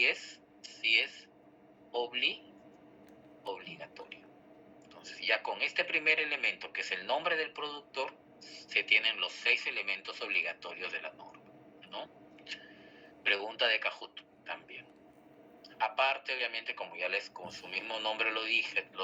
es obligatorio. Entonces, ya con este primer elemento, que es el nombre del productor, se tienen los 6 elementos obligatorios de la norma, ¿no? Pregunta de Kahoot también. Aparte, obviamente, como su mismo nombre lo dice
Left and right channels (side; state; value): both; identical; correlation 1.00